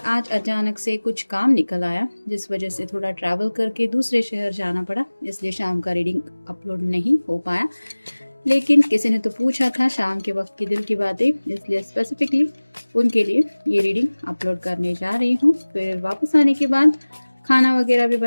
आज अचानक से कुछ काम निकल आया जिस वजह से थोड़ा ट्रैवल करके दूसरे शहर जाना पड़ा, इसलिए शाम का रीडिंग अपलोड नहीं हो पाया। लेकिन किसी ने तो पूछा था शाम के वक्त की दिल की बातें, इसलिए स्पेसिफिकली उनके लिए ये रीडिंग अपलोड करने जा रही हूँ। फिर वापस आने के बाद खाना वगैरह भी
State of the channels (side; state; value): both; inverted; correlation -1.00